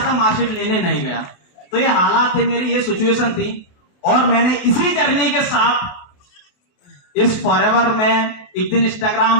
मार्कशीट लेने नहीं गया। तो ये हालात थे मेरी, ये सिचुएशन थी। और मैंने इसी जर्नी के साथ इस फॉरएवर में एक दिन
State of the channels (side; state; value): right; late; 28 ms